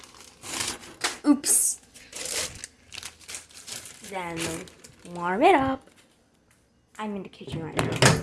Oops. Then warm it up. I'm in the kitchen right now.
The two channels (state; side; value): identical; both; correlation 1.00